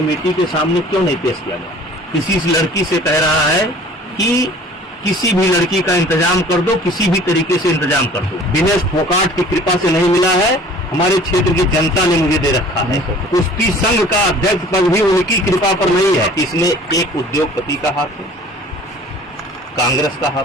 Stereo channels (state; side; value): normal; both; correlation 0.48